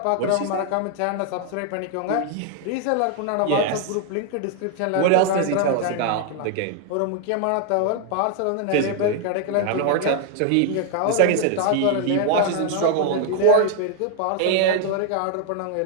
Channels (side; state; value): both; different; correlation 0.00